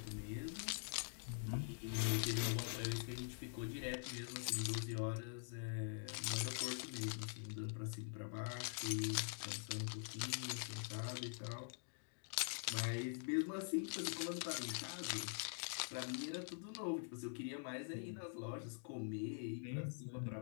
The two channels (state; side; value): silent; right; digital silence